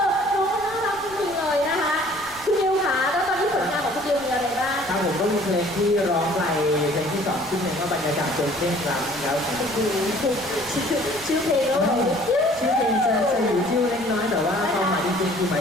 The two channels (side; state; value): right; noise; rumble, 21 dB below the sound